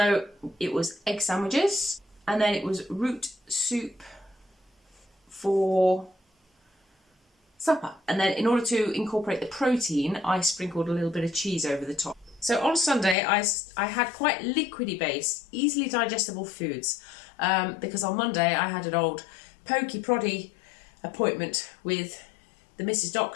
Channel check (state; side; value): drops out; right; at 13.2 s